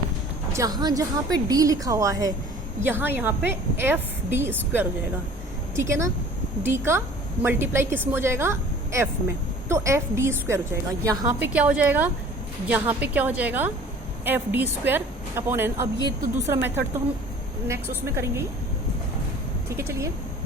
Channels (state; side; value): normal; both; correlation 0.48